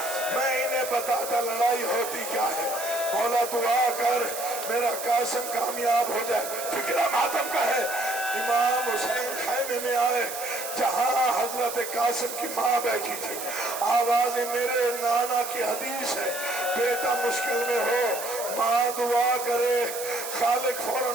میں انہیں بتاتا لڑائی ہوتی کیا ہے. مولا دعا کر میرا قاسم کامیاب ہو جائے. فکرہ ماتم کا ہے. امام حسین خیمے میں آئے جہاں حضرت قاسم کی ماں بیٹھی تھی. آواز میرے نانا کی حدیث ہے, بیٹا مشکل میں ہو ماں دعا کرے, خالق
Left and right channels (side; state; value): right; noise; hiss, 8 dB below the sound